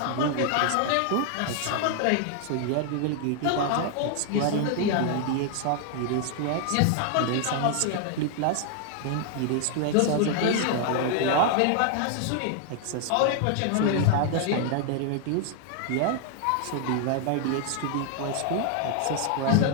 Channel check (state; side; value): different; both; correlation 0.00